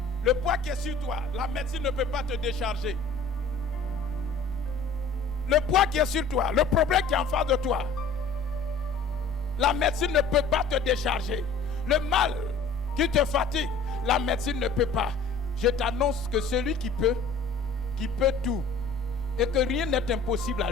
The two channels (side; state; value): right; quieter; 4.0 dB